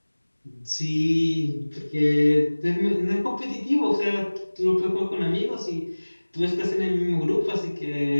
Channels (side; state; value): both; inverted; correlation -1.00